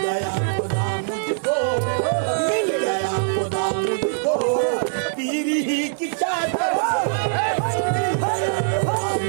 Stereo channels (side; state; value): left; silent; 64 dB below the other